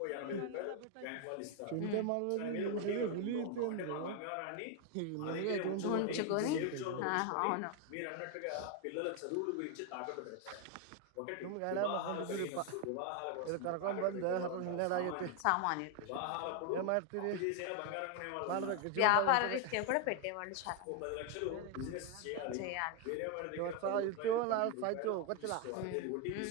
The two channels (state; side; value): different; both; correlation 0.01